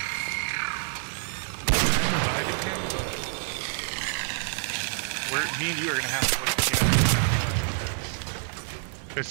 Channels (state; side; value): silent; left; 60 dB below the other